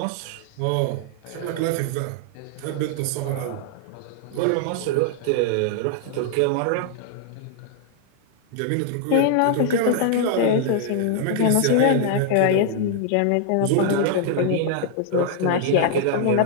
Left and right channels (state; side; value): different; both; correlation 0.00